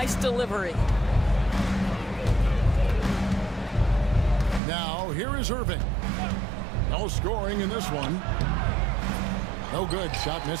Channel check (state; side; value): drops out; left; at 4.6 s